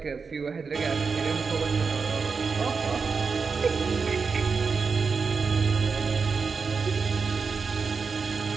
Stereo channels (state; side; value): quieter; left; 5.1 dB